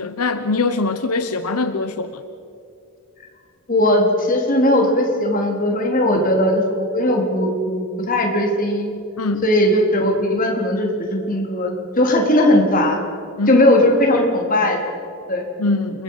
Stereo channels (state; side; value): normal; both; correlation 0.24